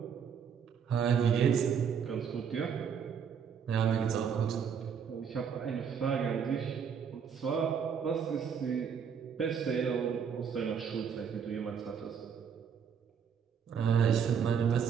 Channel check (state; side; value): quieter; left; 7.2 dB